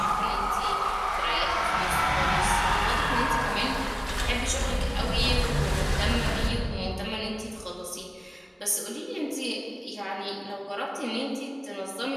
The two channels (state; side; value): identical; both; correlation 1.00